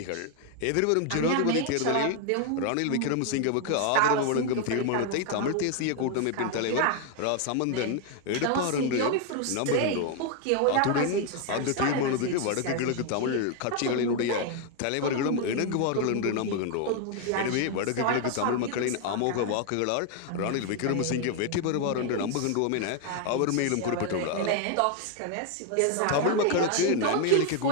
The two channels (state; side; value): different; both; correlation 0.01